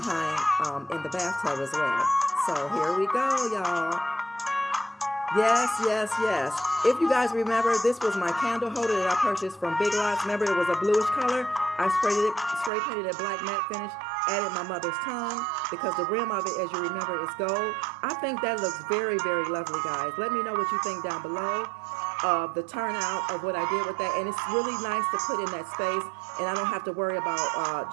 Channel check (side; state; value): left; drops out; at 12.7 s